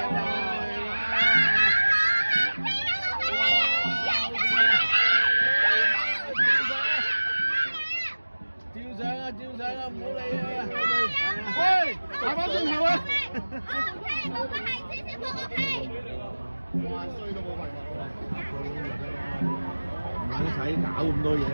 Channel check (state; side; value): inverted; both; correlation -1.00